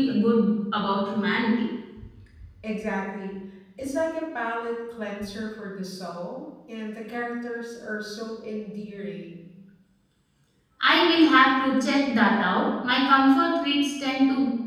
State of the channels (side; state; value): both; identical; correlation 1.00